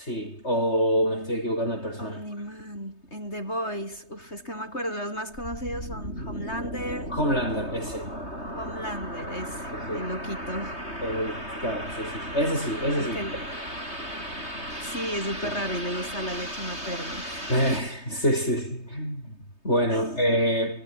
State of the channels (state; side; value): late; right; 3.2 ms